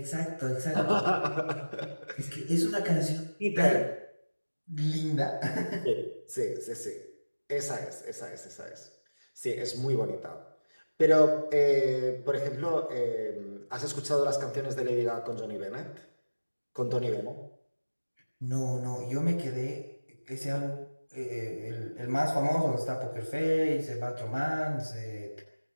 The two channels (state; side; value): inverted; both; correlation -1.00